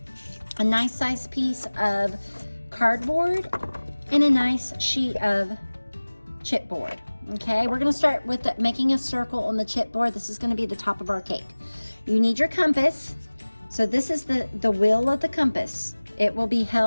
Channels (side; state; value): both; inverted; correlation -1.00